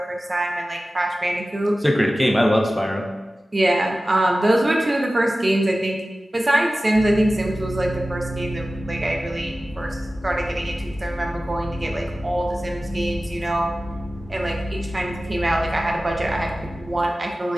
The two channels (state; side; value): normal; both; correlation 0.96